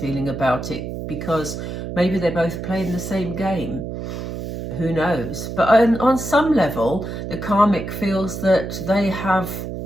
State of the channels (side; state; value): right; noise; hum, 7 dB below the sound